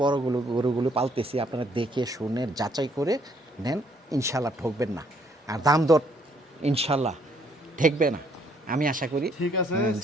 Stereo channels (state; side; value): normal; both; correlation 0.67